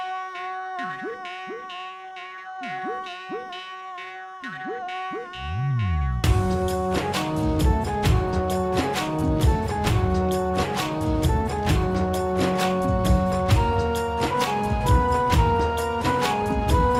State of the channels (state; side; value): identical; both; correlation 1.00